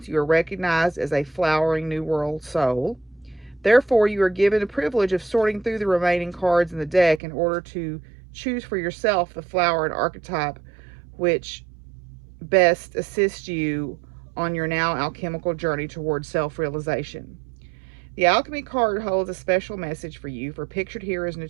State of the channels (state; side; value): drops out; left; at 7.2 s